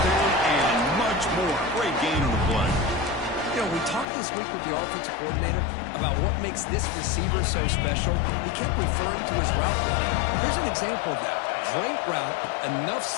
down and much more. Great gain on the play. You know, we talked this week with the offensive coordinator about what makes this receiver so special. He kept referring to his route running. Here's an example of that. Great route, enough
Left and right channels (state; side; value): drops out; right; at 4.0 s